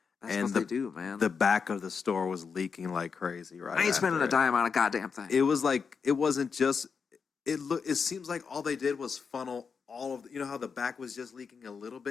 That's what they do, man. The back of the store was leaking like crazy, right? I ain't spending a dime on a goddamn thing. It was like, it wasn't just, it seems like all they did was funnel all of you know how the back was just leaking a little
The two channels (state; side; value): quieter; right; 5.7 dB